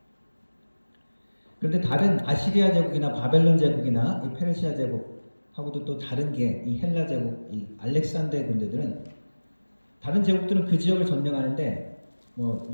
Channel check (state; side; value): inverted; both; correlation -1.00